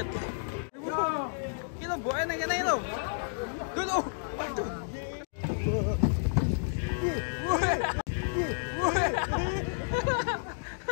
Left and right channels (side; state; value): right; silent; digital silence